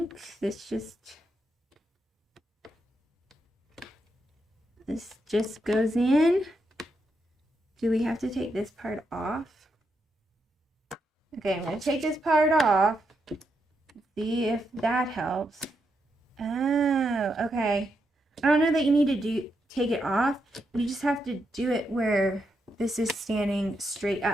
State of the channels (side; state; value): both; normal; correlation 0.82